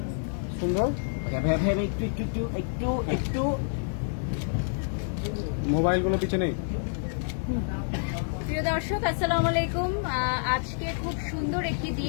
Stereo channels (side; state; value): right; silent; 59 dB below the other